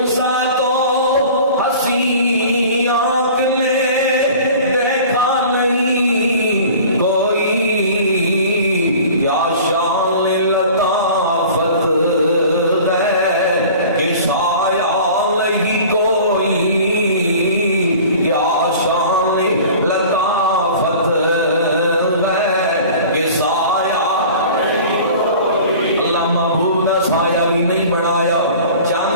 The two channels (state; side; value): inverted; both; correlation -0.43